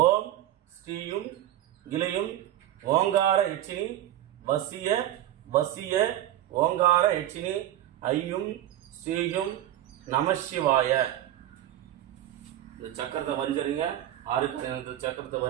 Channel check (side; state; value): left; quieter; 12.9 dB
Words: ஓம் ஸ்ரீயும் கிளையும் ஓங்கார யட்சினி வசிய வசிய ஓங்கார யட்சினி ஐயும் ஸ்ரீயும் நமசிவாய. இந்த சக்கரத்தை வரைஞ்சிருங்க. 6 சக்கரத்தை